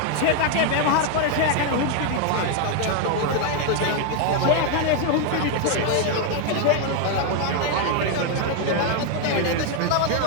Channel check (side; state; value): both; different; correlation 0.01